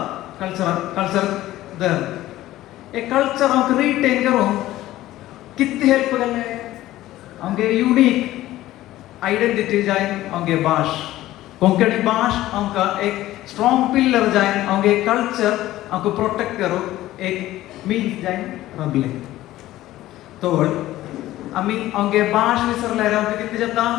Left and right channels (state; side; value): quieter; right; 15.3 dB